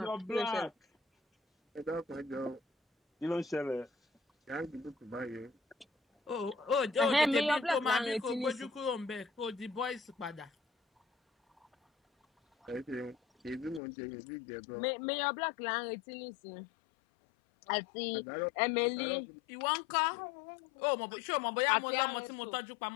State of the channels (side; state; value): right; drops out; at 13.8 s